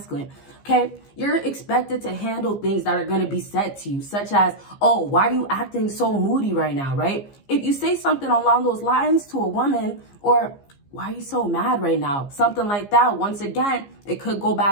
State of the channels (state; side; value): late; right; 15 ms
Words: okay, you're expected to handle things that are going to be said to you, such as, oh, why are you acting so moody right now, right? If you say something along those lines to a woman, or why are you so mad right now, something like that, once again, it could go